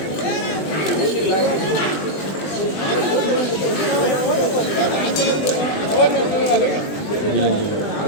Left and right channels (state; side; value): late; right; 20 ms